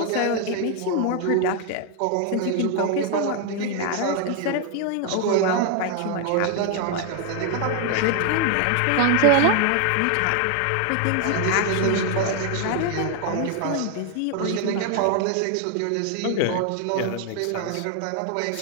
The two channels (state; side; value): different; both; correlation 0.00